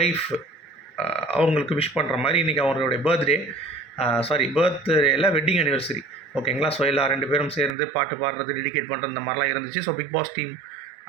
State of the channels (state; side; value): drops out; left; at 7.8 s